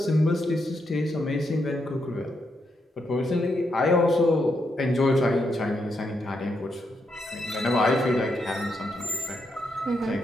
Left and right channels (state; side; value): normal; both; correlation 0.81